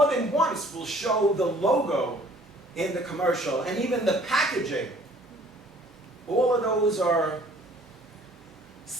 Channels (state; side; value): normal; both; correlation 0.55